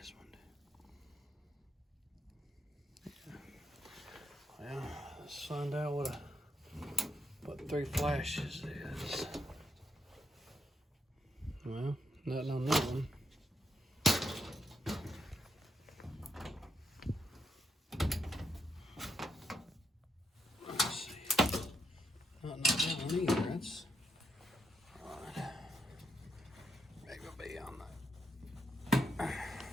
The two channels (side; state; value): both; normal; correlation 0.80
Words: one. Yeah. Well, let's find out what 3 flashes is. Well, nothing on that one. Let's see. Nothing on that one either. That's right. Maybe it'll be on that.